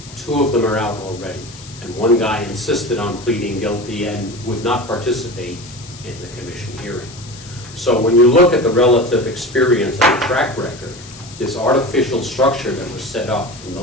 2 of them are out already. And one guy insisted on pleading guilty and would not participate in the commission hearing. So when you look at the relative experience and the track record, this artificial structure that was set up in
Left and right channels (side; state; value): left; noise; hiss, 18 dB below the sound